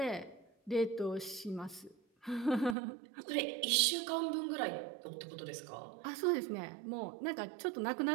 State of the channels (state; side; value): drops out; left; at 2.8 s